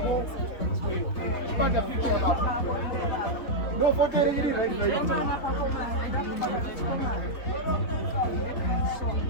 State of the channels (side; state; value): right; late; 3.7 ms